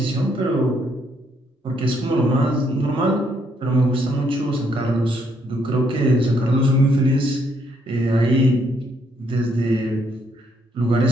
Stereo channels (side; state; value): both; normal; correlation 0.71